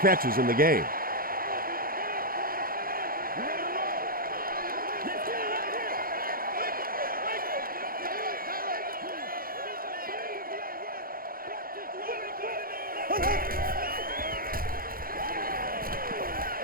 catches in the game.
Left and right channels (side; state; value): left; late; 0.42 ms